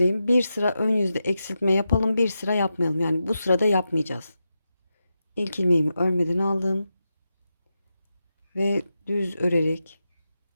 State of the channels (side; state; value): both; inverted; correlation -0.89